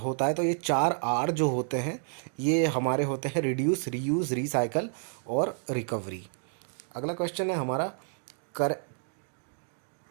है। तो ये 4R जो होते हैं ये हमारे होते हैं रिड्यूस, रीयूज, रिसाइकल और रिकवरी। अगला क्वेश्चन है हमारा, कर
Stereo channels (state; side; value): silent; left; digital silence